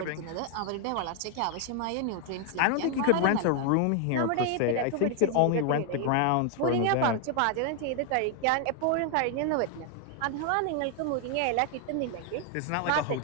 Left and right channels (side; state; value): both; different; correlation 0.00